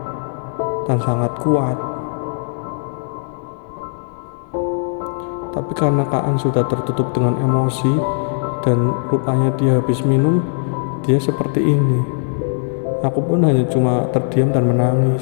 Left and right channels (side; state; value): right; silent; digital silence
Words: dan sangat kuat. Tapi karena Kaan sudah tertutup dengan emosi dan rupanya dia habis minum, dia seperti ini. Aku pun hanya cuma terdiam dan